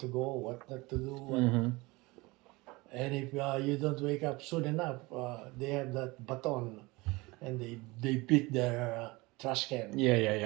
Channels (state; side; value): quieter; left; 23.2 dB